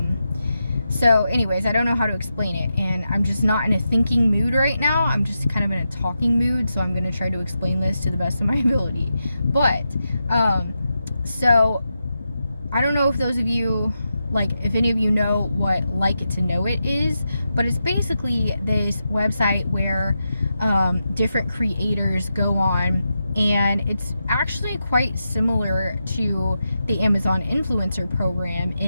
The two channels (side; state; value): both; inverted; correlation -0.88